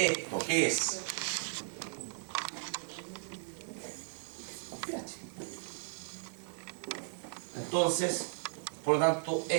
¿qué es? pH. Entonces, por lo tanto,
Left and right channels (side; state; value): left; silent; digital silence